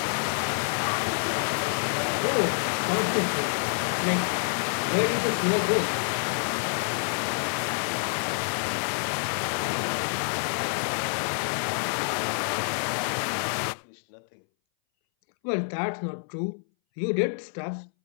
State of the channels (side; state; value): right; silent; 60 dB below the other